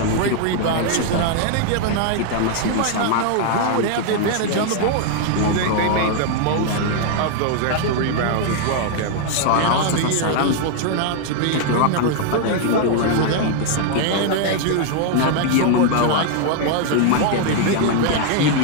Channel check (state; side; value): different; both; correlation 0.00